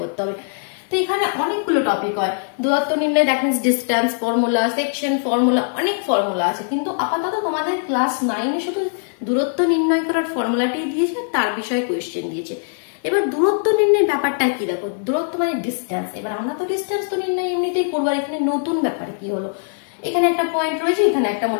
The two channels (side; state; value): right; silent; 65 dB below the other